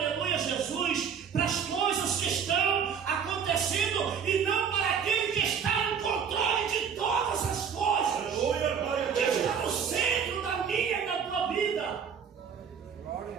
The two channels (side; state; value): left; quieter; 7.1 dB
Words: Jesus, para as coisas que estão acontecendo e não para aquele que está no controle de todas as coisas. Aleluia, que está no centro da minha e da tua vida.